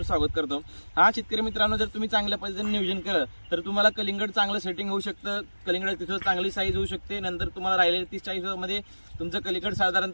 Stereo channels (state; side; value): inverted; both; correlation -1.00